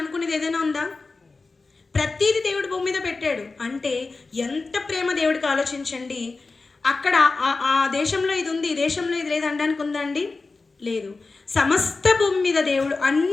అనుకునేది ఏదైనా ఉందా? ప్రతీది దేవుడు భూమి మీద పెట్టాడు. అంటే ఎంత ప్రేమ దేవుడికి ఆలోచించండి. అక్కడ ఆ దేశంలో ఇది ఉంది, ఈ దేశంలో ఇది లేదు అనడానికి ఉందా అండి? లేదు. సమస్త భూమి మీద దేవుడు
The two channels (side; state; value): right; quieter; 3.9 dB